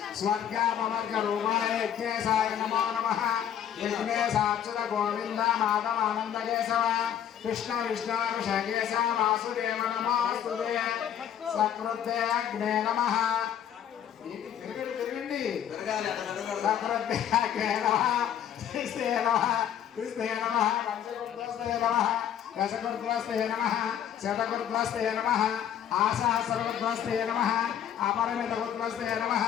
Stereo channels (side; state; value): right; quieter; 9.7 dB